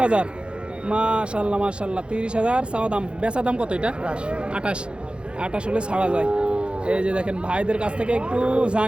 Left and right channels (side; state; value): left; late; 0.056 ms